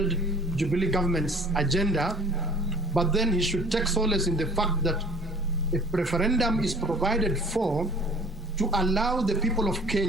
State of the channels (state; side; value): normal; both; correlation 0.49